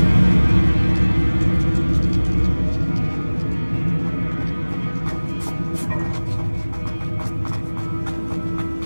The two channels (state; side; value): inverted; both; correlation -1.00